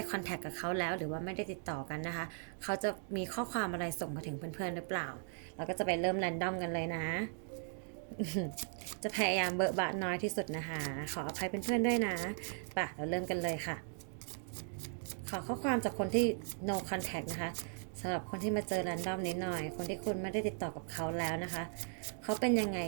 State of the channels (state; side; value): silent; left; 53 dB below the other